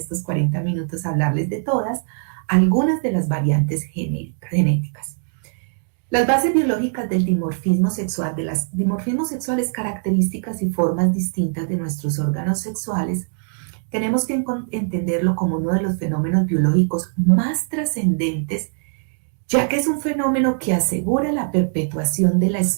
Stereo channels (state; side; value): silent; left; digital silence